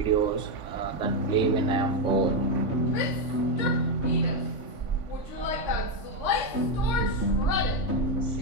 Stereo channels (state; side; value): late; right; 3.5 ms